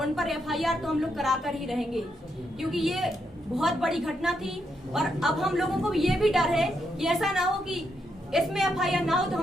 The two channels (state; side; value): normal; both; correlation 0.80